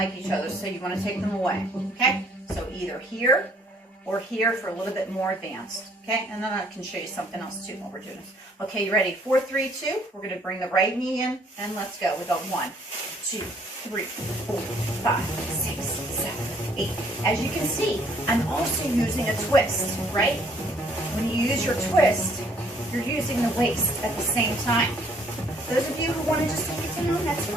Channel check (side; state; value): both; normal; correlation 0.63